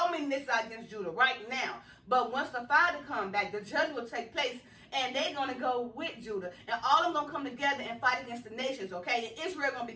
many nations are against Judah right now. But once the Father comes back, the judgment will take place, and they're going to go with Judah. And all of them going to come together and fight against the nations, okay? And Israel going to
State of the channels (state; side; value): identical; both; correlation 1.00